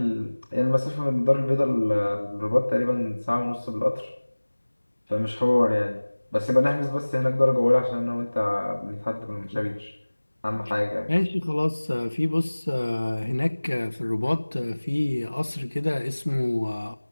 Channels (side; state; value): both; inverted; correlation -1.00